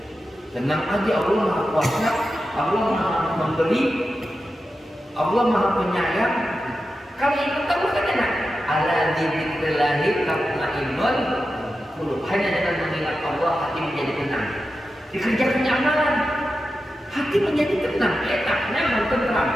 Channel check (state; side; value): normal; both; correlation 0.91